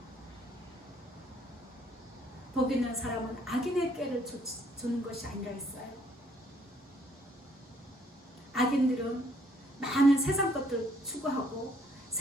복 있는 사람은 악인의 꾀를 주는 것이 아니라 했어요. 악인들은 많은 세상 것들 추구하고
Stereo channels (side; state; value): both; normal; correlation 0.65